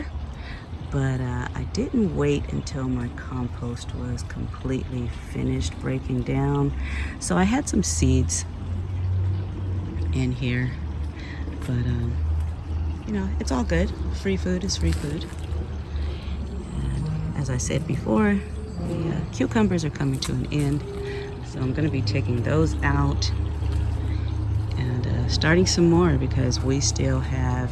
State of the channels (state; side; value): identical; both; correlation 1.00